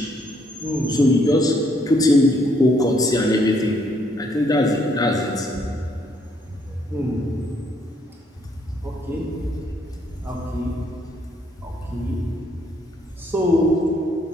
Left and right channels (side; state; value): both; normal; correlation 0.69